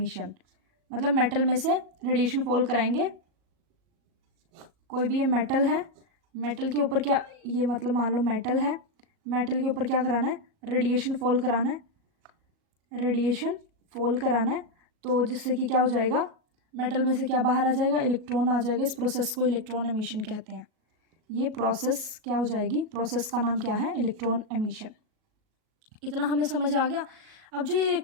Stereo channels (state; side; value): late; left; 37 ms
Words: मतलब मेटल में से रेडिएशन फॉल कराएंगे, कोई भी ये मेटल है, मेटल के ऊपर क्या, ये मतलब मान लो मेटल है, मेटल के ऊपर क्या कराना है, रेडिएशन फॉल कराना है, रेडिएशन फॉल कराना है, तो जिससे कि क्या हो जाएगा, मेटल में से क्या बाहर आ जाएगा, इलेक्ट्रॉन आ जाएगा। इस प्रोसेस को इलेक्ट्रॉन एमिशन कहते हैं। ये प्रोसेस क्या हो जाएगी, प्रोसेस का नाम क्या है, इलेक्ट्रॉन एमिशन। इतना हमें समझ आ गया। अब जो ये